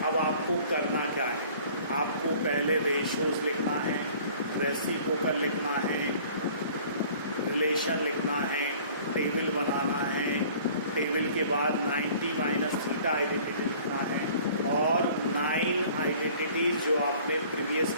अब आपको करना क्या है, आपको पहले रेशियोज लिखना है, रेसिप्रोकल लिखना है, रिलेशन लिखना है, टेबल बनाना है, टेबल के बाद 90 माइनस थीटा आइडेंटिटी लिखना है और 9 आइडेंटिटीज जो आपने प्रीवियस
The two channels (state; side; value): inverted; both; correlation -0.51